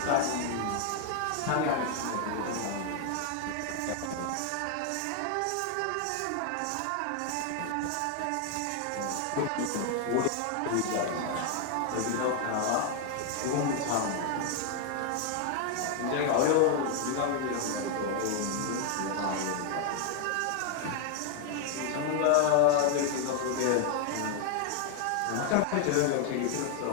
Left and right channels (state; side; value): different; both; correlation 0.00